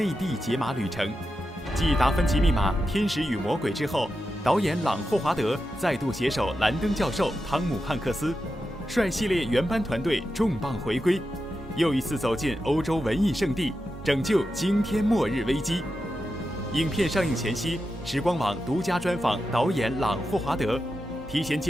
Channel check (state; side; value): normal; both; correlation 0.89